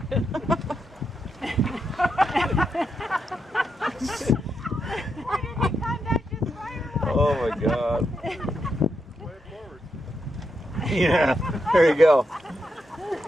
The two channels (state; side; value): normal; both; correlation 0.83